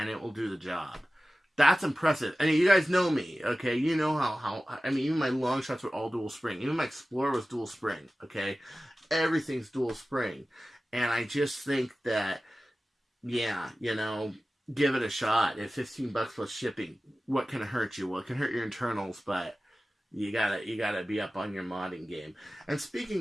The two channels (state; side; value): normal; both; correlation 0.96